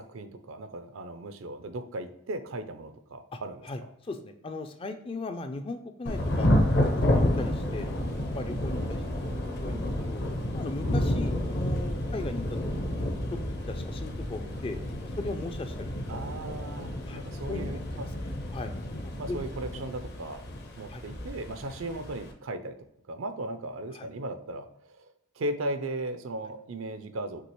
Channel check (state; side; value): normal; both; correlation 0.65